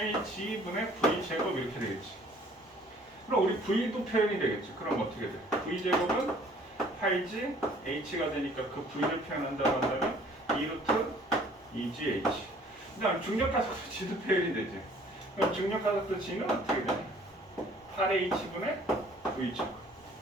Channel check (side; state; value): both; normal; correlation 0.55